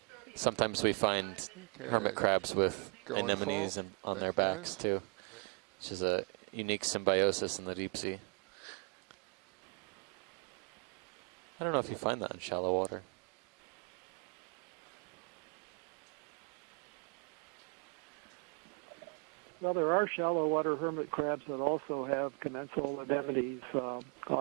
Sometimes we find Okay. hermit crabs with Going anemones full. and on Thank their you, backs guys. too, which is a unique symbiosis in the deep sea. I don't know if you find that in shallow water. Well, there are shallow water hermit crabs that also have commensal anemones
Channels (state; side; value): quieter; left; 36.2 dB